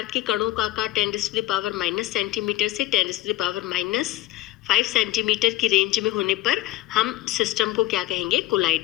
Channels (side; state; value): right; quieter; 16.4 dB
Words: के कणों का आकार 10⁻⁻⁻ सेंटीमीटर से 10⁻⁻5 सेंटीमीटर की रेंज में होने पर हम सिस्टम को क्या कहेंगे,